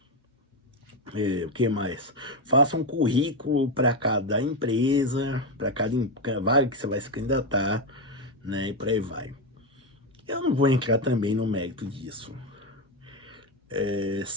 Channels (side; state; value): both; normal; correlation 0.10